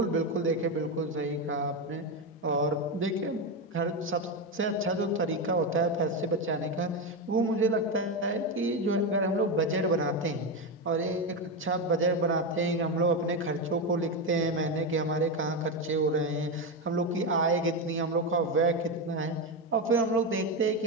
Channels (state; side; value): normal; both; correlation 0.12